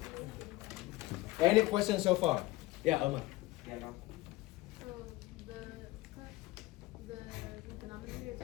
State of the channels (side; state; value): right; quieter; 18.8 dB